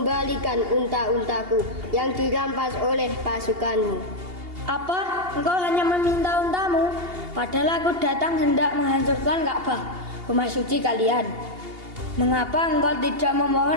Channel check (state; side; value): late; left; 2.8 ms